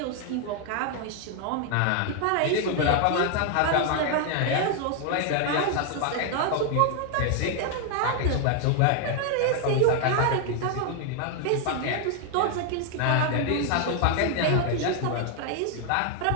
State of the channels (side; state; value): both; different; correlation 0.00